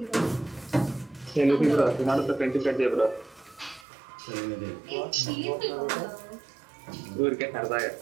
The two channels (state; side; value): drops out; left; at 3.9 s